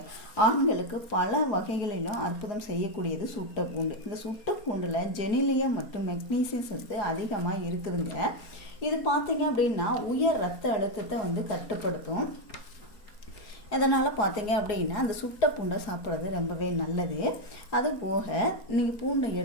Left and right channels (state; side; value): late; right; 4.3 ms